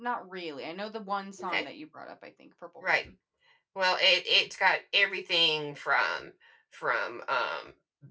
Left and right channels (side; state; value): both; identical; correlation 1.00